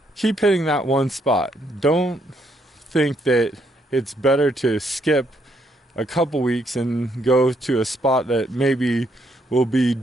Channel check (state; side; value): normal; both; correlation 0.73